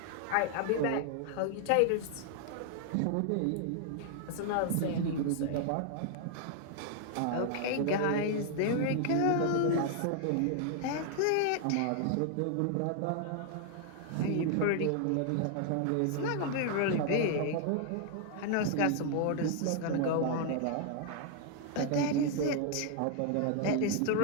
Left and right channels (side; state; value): both; different; correlation 0.00